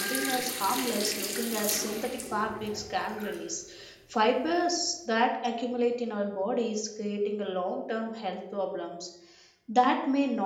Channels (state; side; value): identical; both; correlation 1.00